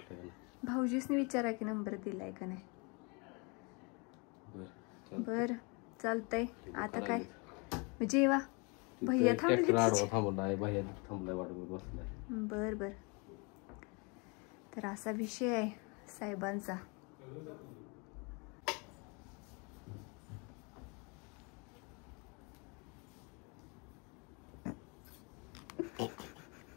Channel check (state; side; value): quieter; right; 31.3 dB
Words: का नाही. भाऊजीसनी विचारा की नंबर दिलाय का नाही. बर चालतंय. आता काय जेवा. भैया थांबलाय. भैया थांबलाय वाट बसलाय. बर बर. तर असा विषय आहे साहेबांचा.